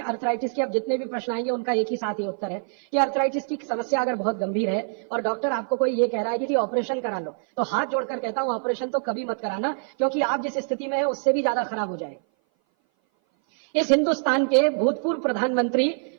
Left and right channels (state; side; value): silent; left; 58 dB below the other